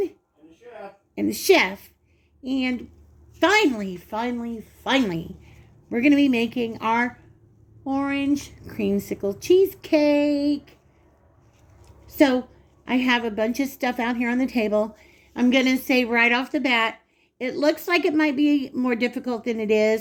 and the chef. And finally, we're going to be making our orange creamsicle cheesecake. So I have a bunch of stuff out here on the table. I'm going to say right off the bat, it looks like it might be more difficult than it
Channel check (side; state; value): both; identical; correlation 1.00